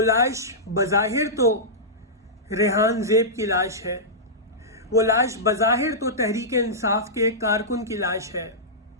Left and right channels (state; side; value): normal; both; correlation -0.15